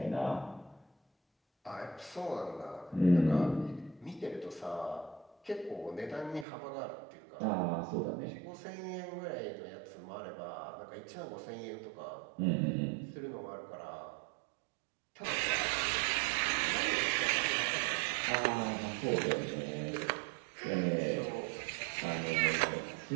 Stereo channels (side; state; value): left; drops out; at 6.5 s